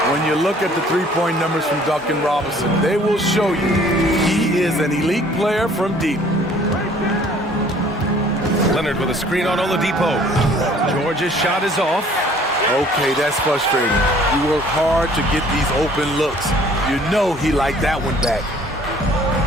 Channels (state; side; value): normal; both; correlation 0.55